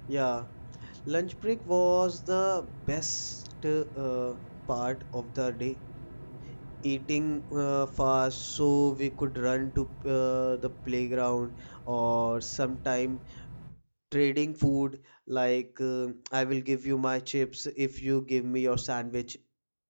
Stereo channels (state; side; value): inverted; both; correlation -1.00